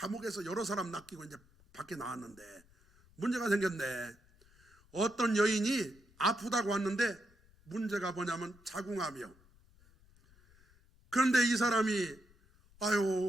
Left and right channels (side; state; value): left; noise; rumble, 29 dB below the sound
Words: 여러 사람 낚이고 이제 밖에 나왔는데 문제가 생겼네. 어떤 여인이 아프다고 왔는데 문제가 뭐냐면 자궁암이요. 그런데 이 사람이